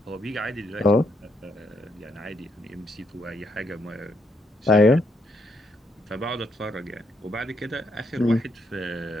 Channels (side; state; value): both; normal; correlation 0.76